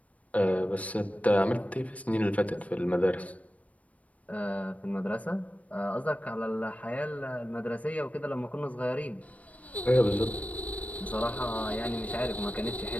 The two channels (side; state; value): right; late; 0.067 ms